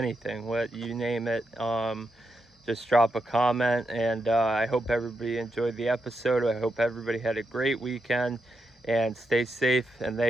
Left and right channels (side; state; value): both; normal; correlation 0.84